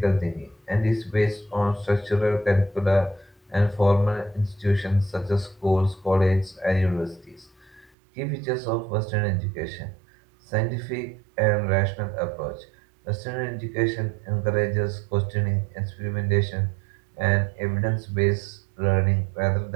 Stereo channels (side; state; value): left; drops out; at 7.9 s